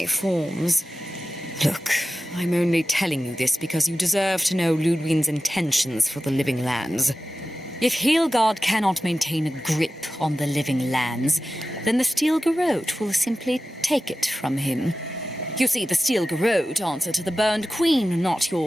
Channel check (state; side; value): normal; both; correlation 0.94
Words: forms. Look, I'm only telling you this because you deserve to know Ludwig's intentions for the living lands. If Heelgard cannot maintain a grip on the living lands, then the Steel Garrote will simply take it from him. You see, the Steel Garrote answer to the Burned Queen, not